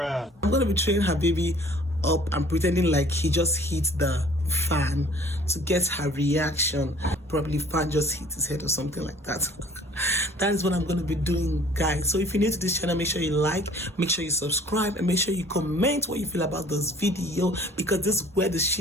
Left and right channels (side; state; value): both; normal; correlation 0.52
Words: I'm going to be throwing her baby up and pretending like he just hit the fan to get her reaction. Probably fan just hit his head or something like that. That is what I'm going to be doing, guys. So if you're new to this channel, make sure you like, make sure you subscribe, and make sure you comment what you feel about this video, because this is where the